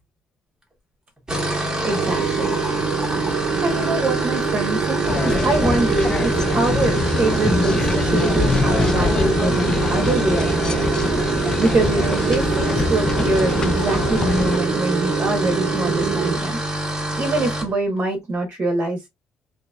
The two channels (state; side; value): normal; both; correlation 0.70